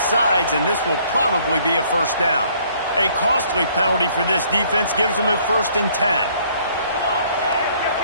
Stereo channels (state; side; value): inverted; both; correlation -0.62